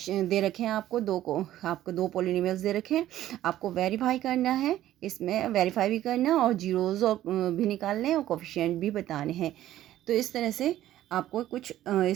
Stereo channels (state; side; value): quieter; left; 13.3 dB